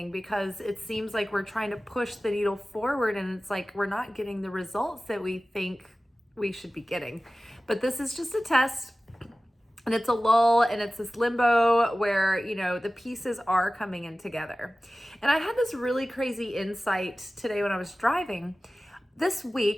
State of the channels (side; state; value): both; normal; correlation 0.97